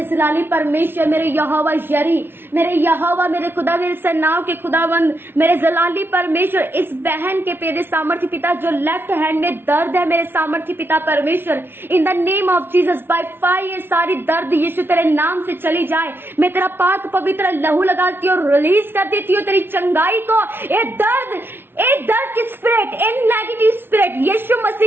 जलाली परमेश्वर, मेरे यहोवा यरी, मेरे यहोवा, मेरे खुदा, मेरे सेनाओं के खुदावंद, मेरे जलाली परमेश्वर, इस बहन के मेरे सामर्थी पिता जो लेफ्ट हैंड में दर्द है, मेरे सामर्थी पिता परमेश्वर, इन the name of Jesus by fire ये सारी दर्द यीशु तेरे नाम से चली जाए। मैं तेरा पाक पवित्र लहू लगाती हूँ, रिलीज कर देती हूँ तेरी चंगाई को। ये दर्द की स्पिरिट, इन नेगेटिव स्पिरिट यीशु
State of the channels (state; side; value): late; left; 0.11 ms